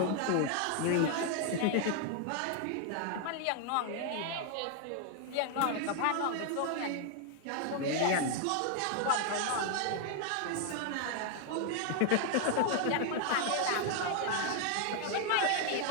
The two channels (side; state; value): both; different; correlation 0.00